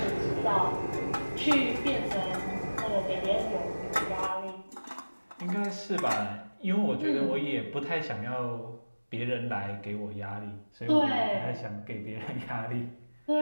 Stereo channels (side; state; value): both; inverted; correlation -1.00